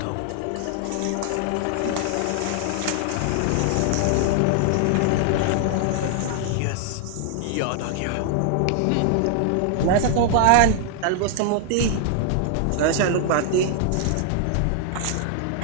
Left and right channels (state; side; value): different; both; correlation 0.00